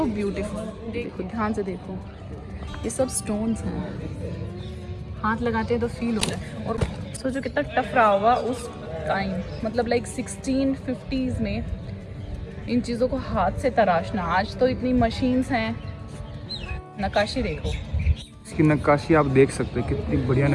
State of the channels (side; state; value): both; identical; correlation 1.00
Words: beautiful. देखो ध्यान से देखो, ये सब स्टोन्स हैं, हाथ लगाते हैं तो फील होता है। और सोचो कितना टफ रहा होगा उस टाइम, मतलब लाइक 1650s में इन चीज़ों को हाथ से तराशना। आज तो इतनी मशीन्स हैं। नक्काशी देखो, इसकी नक्काशी आप देख सकते हैं, कितनी बढ़िया